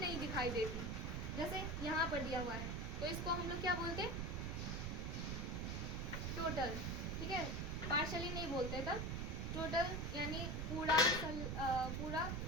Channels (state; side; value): noise; right; rumble, 1 dB below the sound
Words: दिखाई देती, जैसे यहाँ पर दिया हुआ है, तो इसको हम लोग क्या बोलते हैं, टोटल, ठीक है, पार्शियली नहीं बोलते तब, टोटल यानी पूरा